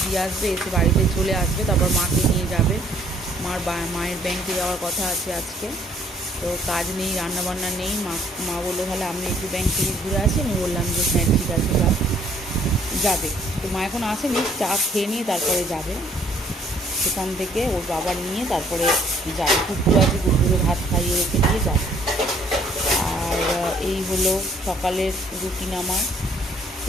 দিয়ে আসবে, এসে বাড়িতে চলে আসবে, তারপর মাকে নিয়ে যাবে। মায়ের ব্যাংকে যাওয়ার কথা আছে আজকে। তো কাজ নেই, রান্নাবান্না নেই। মা বললো তাহলে আমি একটু ব্যাংক থেকে ঘুরে আসি। আমি বললাম যে হ্যাঁ ঠিক আছে, যাবে। তো মা এখন আসেনি, চা খেয়ে নিয়ে তারপরে যাবে। সেখান থেকে ওর বাবা নিয়ে তারপরে যাবে। কুকুর আছে, কুকুরে ভাত খাইয়ে রেখে দিয়ে যাবে। আর এই হলো সকালের রুটিন আমার।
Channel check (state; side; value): normal; both; correlation 0.62